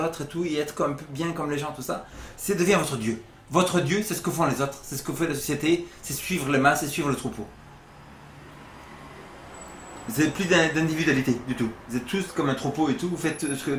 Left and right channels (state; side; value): identical; both; correlation 1.00